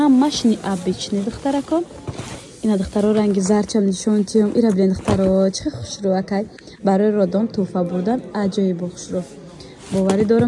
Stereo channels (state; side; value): identical; both; correlation 1.00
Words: необычный духтарако. Ина духтаро ранги зарчам нишонтиём. Ира билен духтаро чиқа хушрӯакай. Барои родон туҳфа бурдан аҷоиб хушрӯ. باوری